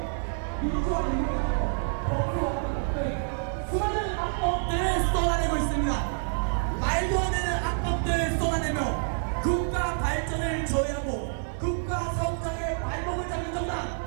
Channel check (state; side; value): silent; left; 58 dB below the other